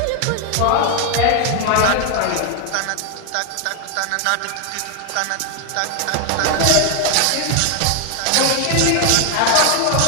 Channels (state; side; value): different; both; correlation 0.00